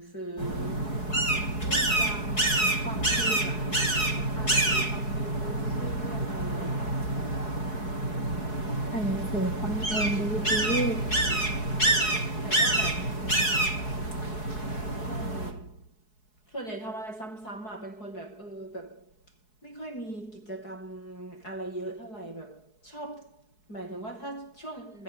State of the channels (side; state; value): right; late; 4.7 ms